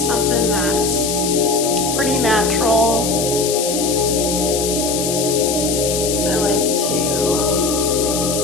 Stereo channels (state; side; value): noise; left; hiss, 3 dB below the sound